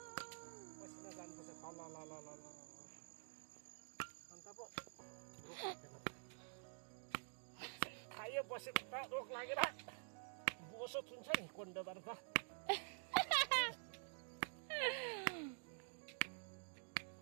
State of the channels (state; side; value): silent; left; digital silence